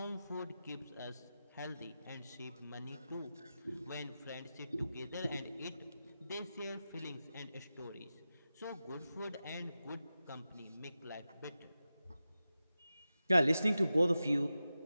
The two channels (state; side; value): inverted; both; correlation -0.93